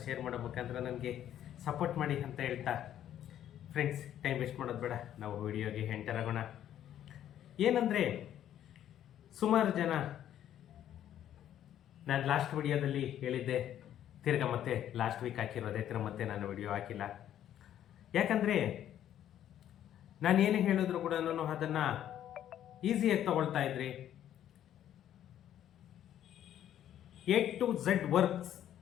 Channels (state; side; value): quieter; right; 11.0 dB